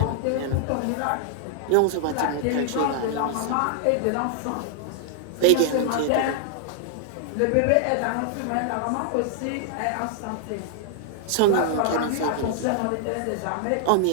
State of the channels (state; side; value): different; both; correlation -0.01